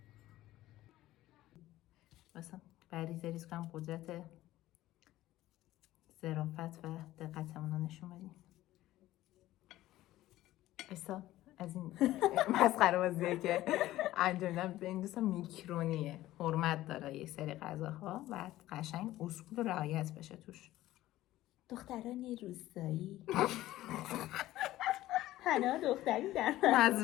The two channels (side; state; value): right; quieter; 15.4 dB